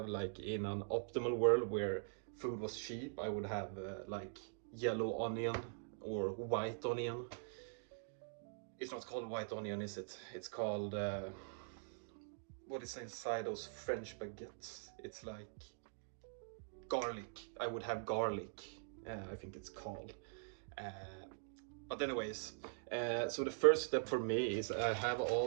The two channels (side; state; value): left; silent; digital silence